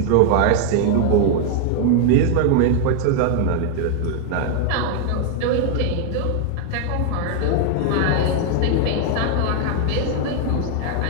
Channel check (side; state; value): both; different; correlation 0.00